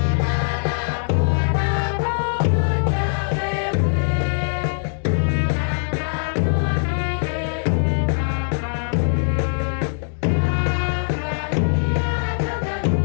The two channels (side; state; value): right; silent; digital silence